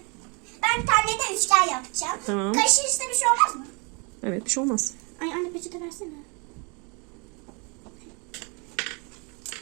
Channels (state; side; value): quieter; left; 32.7 dB